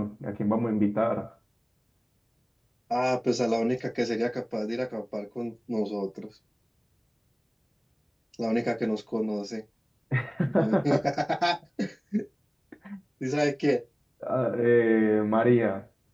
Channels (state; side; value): identical; both; correlation 1.00